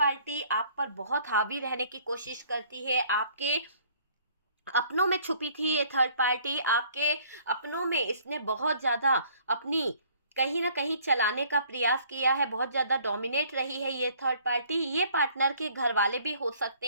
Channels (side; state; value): both; inverted; correlation -0.58